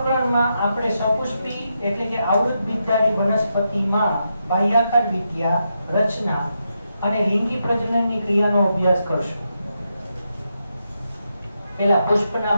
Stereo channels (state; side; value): inverted; both; correlation -0.84